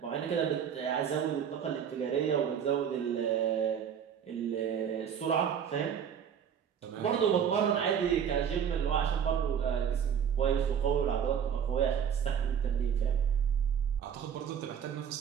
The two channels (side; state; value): left; quieter; 8.1 dB